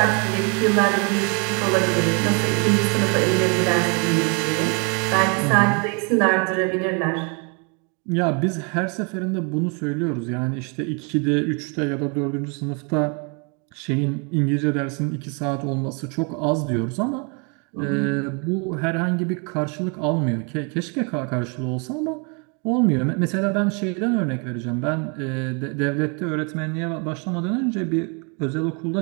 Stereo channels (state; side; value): quieter; left; 35.2 dB